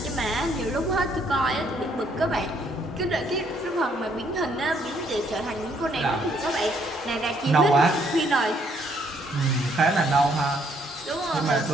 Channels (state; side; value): normal; both; correlation 0.68